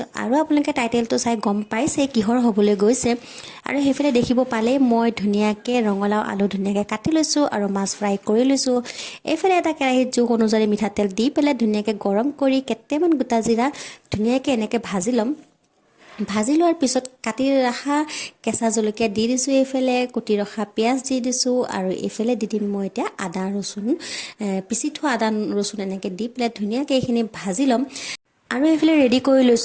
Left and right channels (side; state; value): both; identical; correlation 1.00